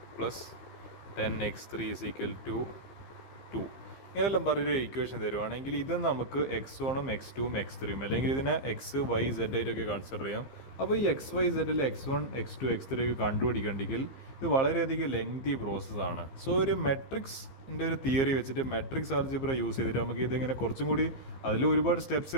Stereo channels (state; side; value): late; right; 15 ms